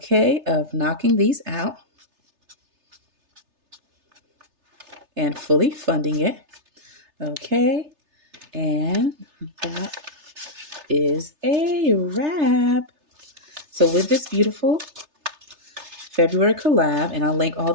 of knocking these out and fully funding it. Okay, and that is a wrap. So with this beautiful February collab, and I'll link all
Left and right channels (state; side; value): late; left; 3.3 ms